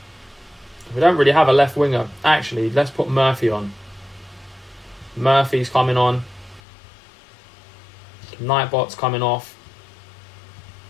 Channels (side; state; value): right; drops out; at 6.6 s